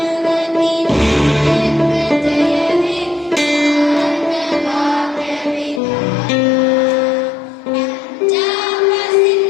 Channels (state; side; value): drops out; right; at 5.8 s